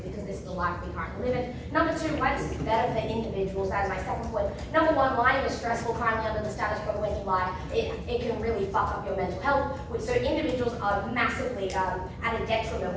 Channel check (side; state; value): both; identical; correlation 1.00